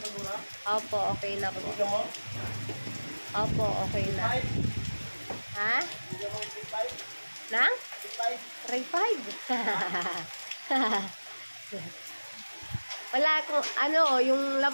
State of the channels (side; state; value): both; inverted; correlation -1.00